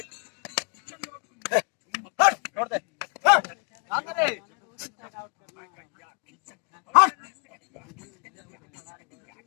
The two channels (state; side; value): quieter; right; 36.9 dB